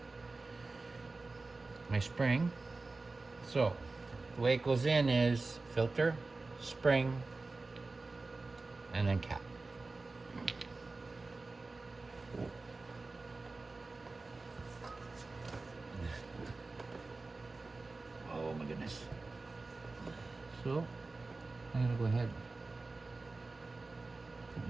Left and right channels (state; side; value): quieter; left; 3.5 dB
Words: my spring. So the way it goes in is filter, spring, and then cap. Oh my goodness. So I'm gonna go ahead and put